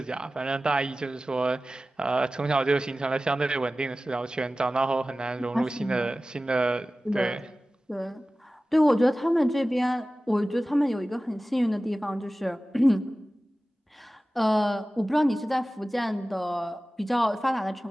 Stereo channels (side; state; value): both; normal; correlation 0.96